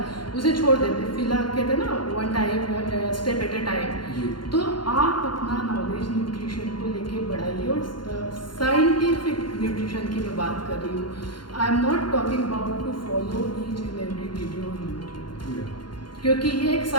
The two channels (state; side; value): late; right; 0.71 ms